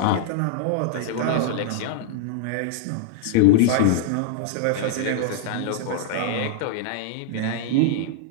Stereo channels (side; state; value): both; different; correlation -0.01